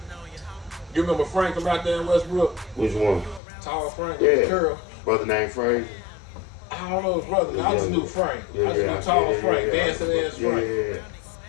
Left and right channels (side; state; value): right; drops out; at 3.4 s